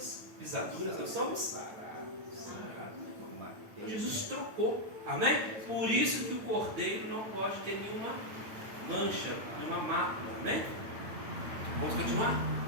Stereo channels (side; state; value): left; late; 9.0 ms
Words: pisaduras, nós somos sarados. Então Jesus trocou, amém? Por isso que o cordeiro não pode ter nenhuma mancha, nenhuma mácula, amém? Vamos continuar?